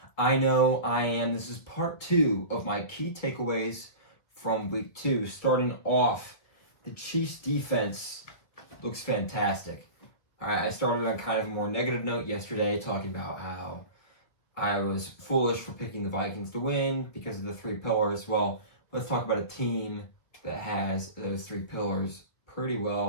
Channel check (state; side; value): late; right; 1.8 ms